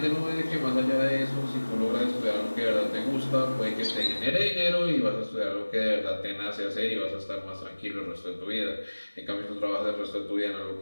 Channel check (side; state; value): both; inverted; correlation -1.00